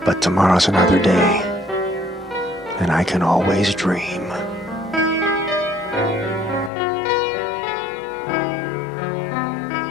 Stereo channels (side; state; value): right; drops out; at 6.7 s